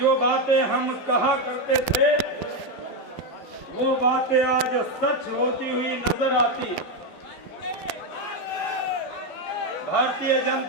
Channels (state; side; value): late; right; 12 ms